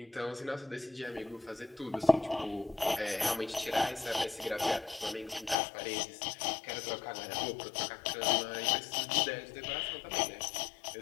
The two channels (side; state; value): right; drops out; at 5.6 s